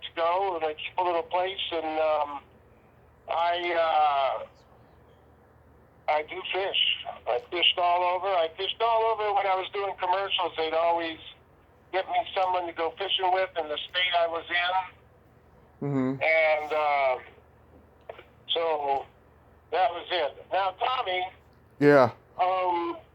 to go, and I keep a little place, and I do fish. I fished all over. I fished all over when I was doing commercials. They'd always get me someone to go fishing with in the state I was in. Mm-hmm. And so that was it. Now, Tommy. Yeah.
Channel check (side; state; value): both; identical; correlation 1.00